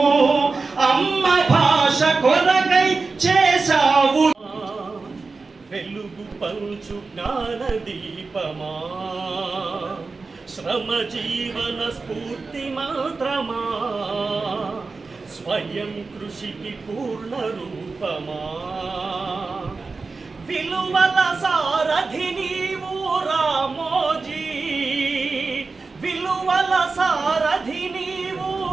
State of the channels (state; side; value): quieter; left; 4.1 dB